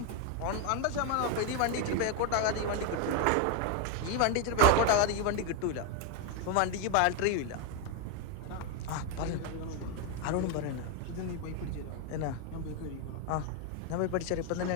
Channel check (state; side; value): different; both; correlation 0.01